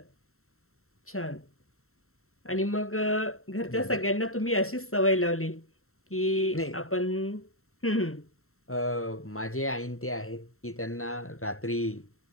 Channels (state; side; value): late; right; 0.63 ms